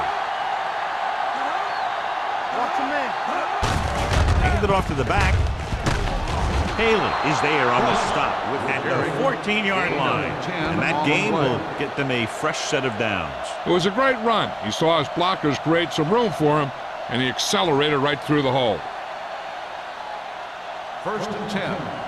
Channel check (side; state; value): both; identical; correlation 1.00